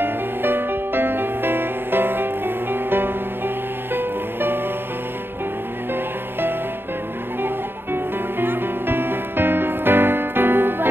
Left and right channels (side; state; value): left; late; 0.10 ms